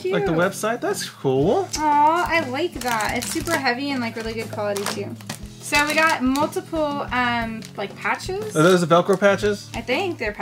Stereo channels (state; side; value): identical; both; correlation 1.00